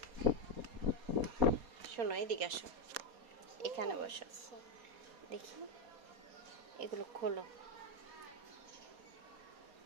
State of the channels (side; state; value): left; late; 4.2 ms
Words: শোনো, এদিকে আসো, এখানে বসো, দেখি এগুলো খোলো।